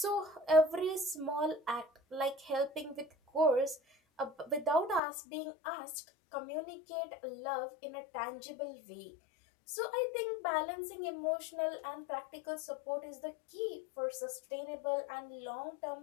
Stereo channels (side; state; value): right; drops out; at 5.0 s